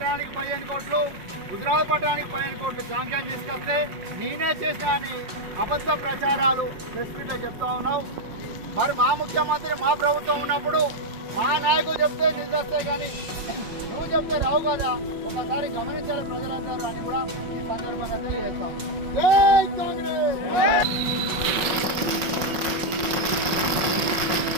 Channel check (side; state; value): left; late; 5.6 ms